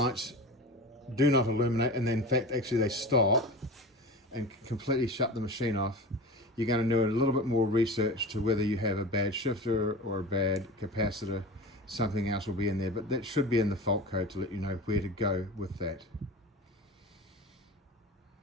do not illuminate, and then in fact actually they stop and completely shut the machine off, you're going to do a little bit more research to whether you have a bad shifter or a bad capacitor. Something else will be in there, but that should be in the fault code to let you know where to go with that.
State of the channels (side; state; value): both; normal; correlation 0.32